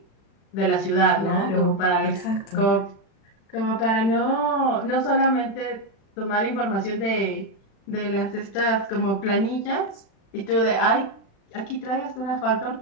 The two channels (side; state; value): right; late; 36 ms